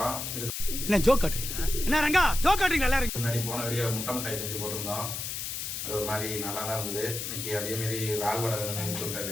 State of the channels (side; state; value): left; noise; hiss, 5 dB below the sound